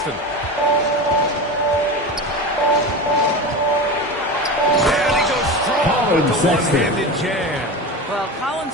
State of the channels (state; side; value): normal; both; correlation 0.26